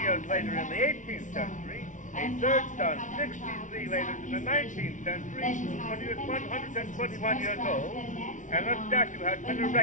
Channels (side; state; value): right; late; 0.37 ms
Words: later in the 18th century, a third son 63 later in the 19th century, when he was 121 years old, and a statue has been